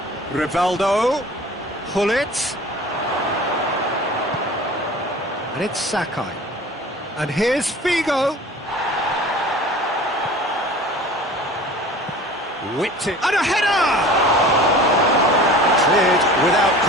Rivaldo, Hullet, and it's Sakai. And here's Figo. Whipped it, and a header! Cleared without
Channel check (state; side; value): normal; both; correlation 0.42